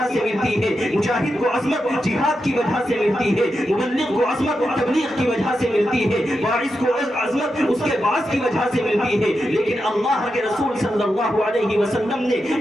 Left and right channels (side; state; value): both; normal; correlation 0.88